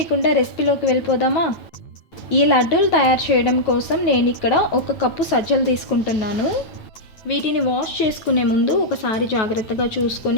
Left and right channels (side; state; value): right; late; 9.2 ms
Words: రెసిపీలోకి వెళ్ళిపోదామా? ఈ లడ్డూలు తయారు చేయడం కోసం నేను ఇక్కడ 1 కప్పు సజ్జలు తీసుకుంటున్నాను. వీటిని వాష్ చేసుకునే ముందు ఒకసారి జాగ్రత్తగా